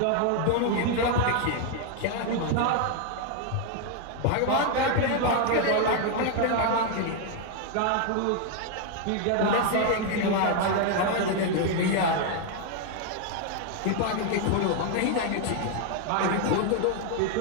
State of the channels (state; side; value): different; both; correlation 0.00